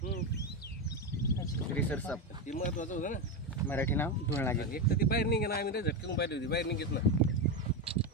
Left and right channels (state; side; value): normal; both; correlation 0.12